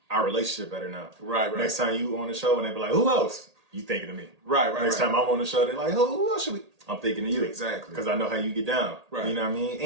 our relationship better now. Right. Next time you on the show and they be like, who else? You thinking of me. Right. Next time I'm on the show, they're like, who else should we? I'm thinking of you. Exactly. Because I know how you get down. Right. You know what I mean?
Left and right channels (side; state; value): left; late; 1.8 ms